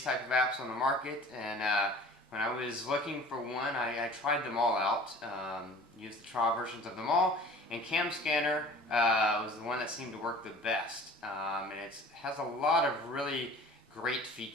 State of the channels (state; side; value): normal; both; correlation 0.45